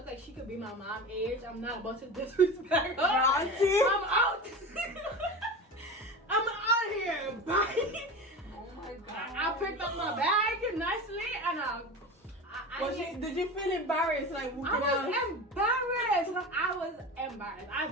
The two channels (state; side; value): normal; both; correlation 0.29